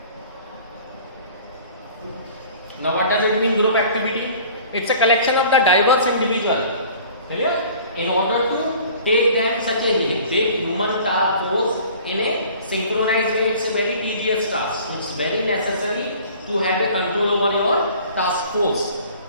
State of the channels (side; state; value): both; inverted; correlation -0.48